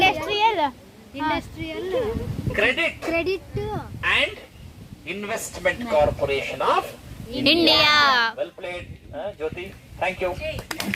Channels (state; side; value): identical; both; correlation 1.00